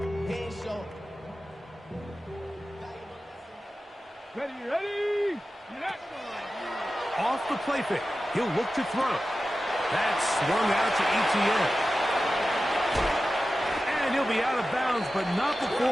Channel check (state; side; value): normal; both; correlation 0.94